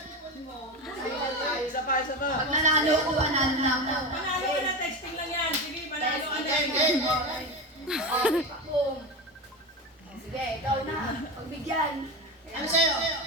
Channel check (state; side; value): normal; both; correlation 0.20